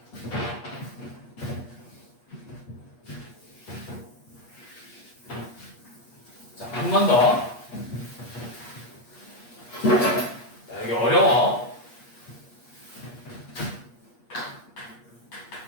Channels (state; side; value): late; right; 8.4 ms